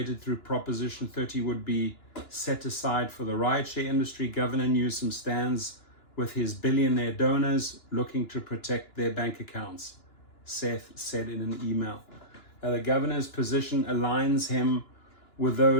through Proposition 30 would be set aside for the rideshare industry. Governor Newsom stands with his billionaire donors looking to protect their bank accounts, Seth said in an email. The governor's position aligns him with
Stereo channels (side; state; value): right; late; 2.9 ms